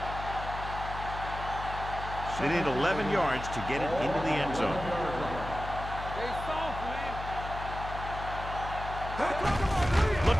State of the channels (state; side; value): noise; left; hum, 8 dB below the sound